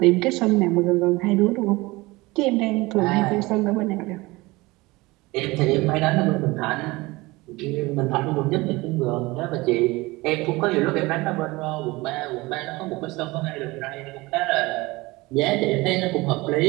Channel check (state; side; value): quieter; left; 21.9 dB